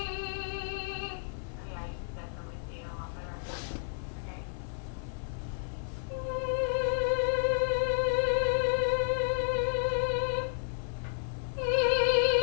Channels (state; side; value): silent; right; 57 dB below the other